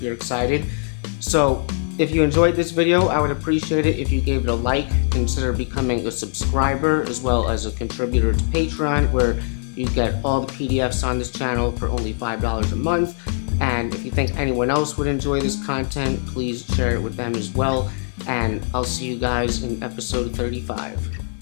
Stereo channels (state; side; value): silent; right; 64 dB below the other